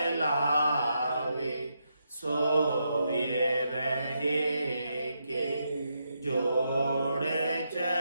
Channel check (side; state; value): both; inverted; correlation -0.82